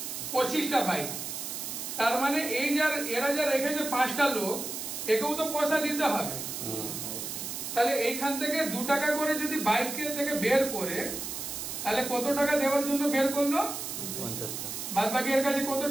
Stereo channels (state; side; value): noise; right; hiss, 6 dB below the sound